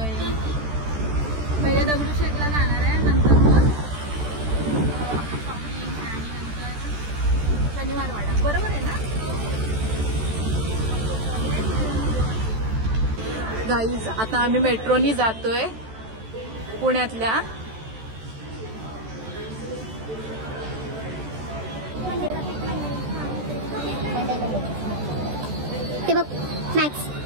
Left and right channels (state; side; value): late; left; 14 ms